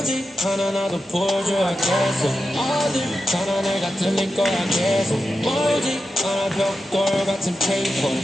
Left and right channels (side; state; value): both; normal; correlation 0.90